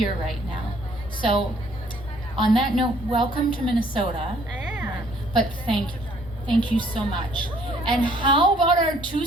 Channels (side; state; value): left; noise; hum, 20 dB below the sound